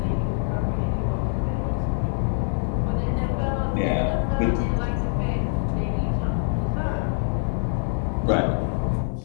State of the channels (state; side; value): silent; right; digital silence